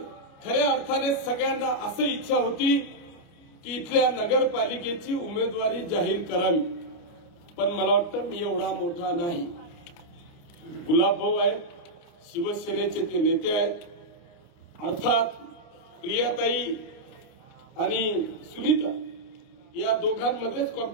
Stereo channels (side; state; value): right; late; 29 ms